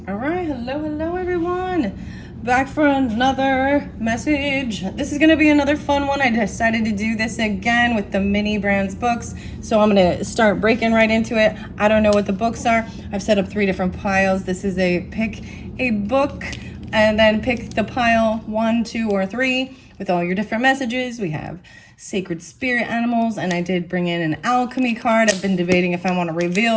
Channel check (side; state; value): both; identical; correlation 1.00